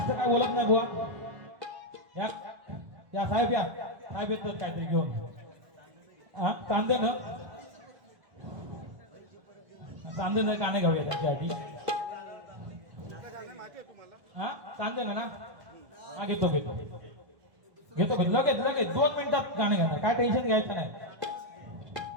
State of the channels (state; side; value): late; left; 1.2 ms